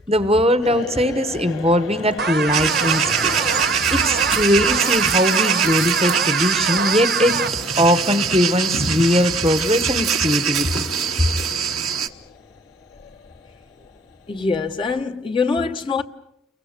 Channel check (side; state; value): both; normal; correlation 0.55